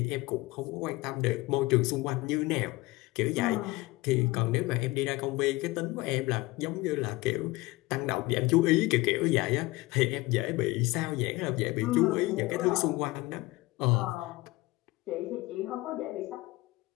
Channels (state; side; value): quieter; right; 20.8 dB